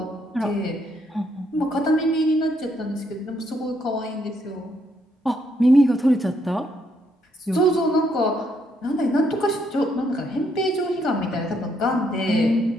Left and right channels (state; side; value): normal; both; correlation 0.73